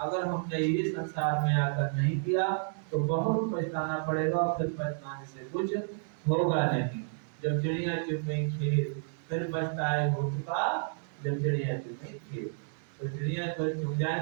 हमने ये संसार में आकर नहीं किया तो बहुत पछताना पड़ेगा, और फिर पछताने से कुछ होगा नहीं। जब चिड़िया चुग गई खेत, फिर पछताए हो चुका जब चिड़िया चुग गई खेत। तो चिड़िया तो चुग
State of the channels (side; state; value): left; silent; digital silence